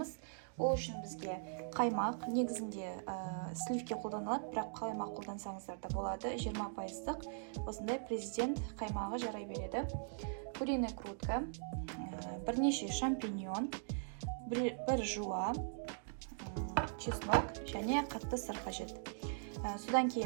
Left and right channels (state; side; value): silent; left; digital silence